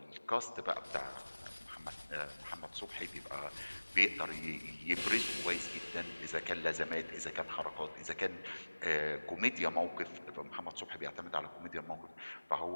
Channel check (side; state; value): both; inverted; correlation -1.00